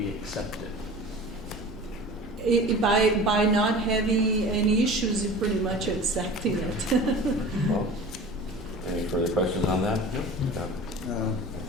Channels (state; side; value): normal; both; correlation 0.38